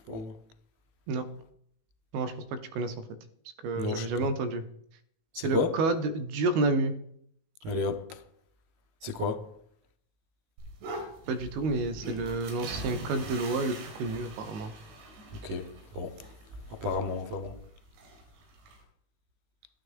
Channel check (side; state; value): left; late; 19 ms